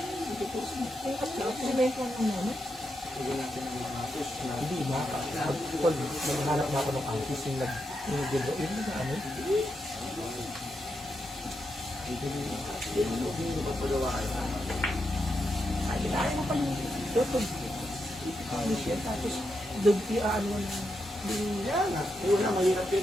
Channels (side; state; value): both; normal; correlation 0.84